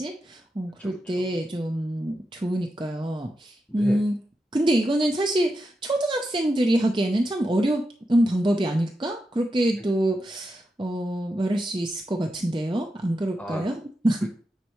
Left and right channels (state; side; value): normal; both; correlation 0.88